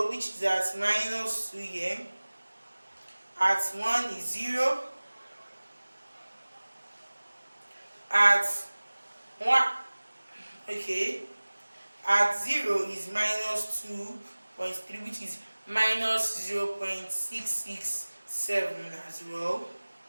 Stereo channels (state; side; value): inverted; both; correlation -1.00